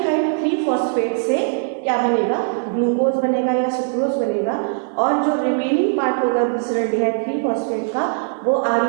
3 फॉस्फेट से क्या बनेगा, ग्लूकोज बनेगा या सुक्रोज बनेगा, और जो रिमेनिंग पार्ट होगा ग्लिसरॉल्डिहाइड 3 फॉस्फेट का वो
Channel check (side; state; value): left; silent; 62 dB below the other